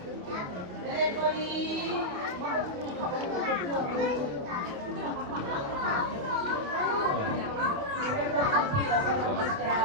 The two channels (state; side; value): late; left; 28 ms